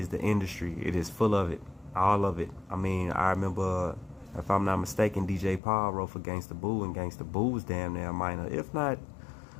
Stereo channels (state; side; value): drops out; right; at 5.6 s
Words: the industry. It is full of it. All of it. I mean, I remember, if I'm not mistaken, DJ Paul wrote for Gangsta Boo, and Gangsta Boo was damn near minor, if not